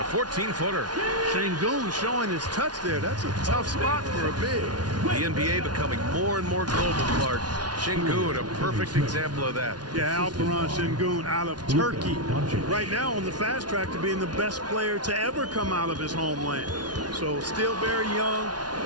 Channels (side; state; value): left; late; 0.69 ms